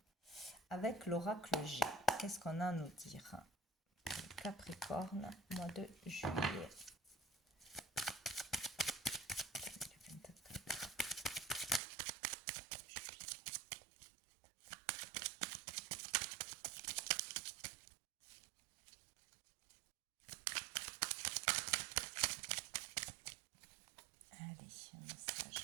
avec l'oracle G. Qu'est-ce qu'on a à nous dire? Capricorne, mois de juillet. Allez, un message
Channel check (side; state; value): left; drops out; at 11.8 s